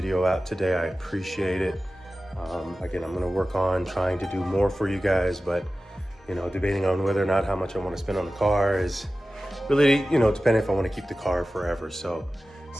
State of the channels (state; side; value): normal; both; correlation 0.95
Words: out today. I appreciate it. Again, I'm gonna work on trying to do more for you guys, but debating on whether or not how much I want to spend on the car is really, depending if I want to keep the car forever. So